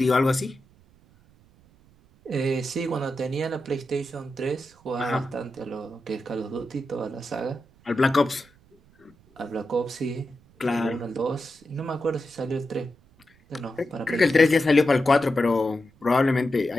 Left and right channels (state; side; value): noise; right; rumble, 29 dB below the sound